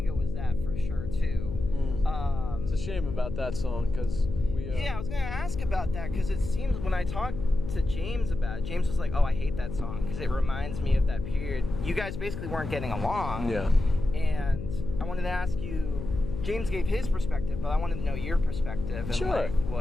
was that for sure too. It's a shame about that song because we. Yeah, I was gonna ask about that because it seems when I talked to James about it, James was like, oh, I hate that song because it reminds me of that period. You guys basically weren't getting along. Yeah. And I wanted to ask you, James gave his perspective, but I wanted to know your perspective and like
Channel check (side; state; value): left; noise; hum, 7 dB below the sound